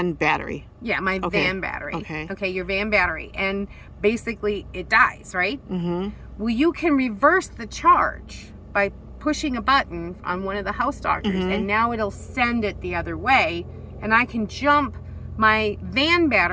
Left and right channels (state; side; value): identical; both; correlation 1.00